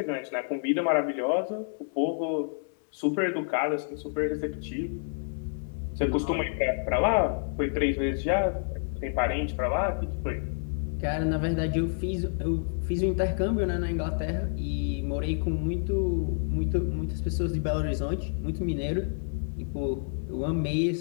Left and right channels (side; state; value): right; silent; 59 dB below the other